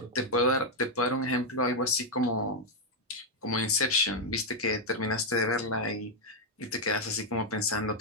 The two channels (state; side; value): normal; both; correlation 0.00